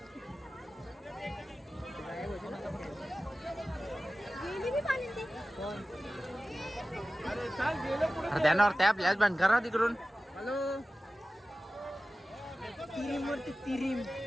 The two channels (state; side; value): normal; both; correlation 0.95